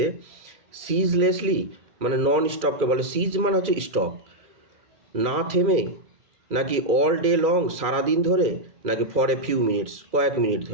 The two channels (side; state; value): left; late; 2.4 ms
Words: সিজলেসলি মানে নন স্টপকে বলে, সিজ মানে হচ্ছে স্টপ, না থেমে, নাকি অল ডে লং সারাদিন ধরে, নাকি ফর এ ফিউ মিনিটস কয়েক মিনিট